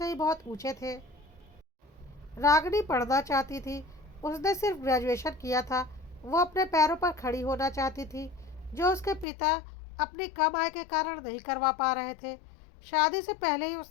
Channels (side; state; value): right; drops out; at 9.2 s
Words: ही बहुत ऊंचे थे। रागनी पढ़ना चाहती थी। उसने सिर्फ ग्रेजुएशन किया था। वो अपने पैरों पर खड़ी होना चाहती थी, जो उसके पिता अपनी कम आय के कारण नहीं करवा पा रहे थे। शादी से पहले ही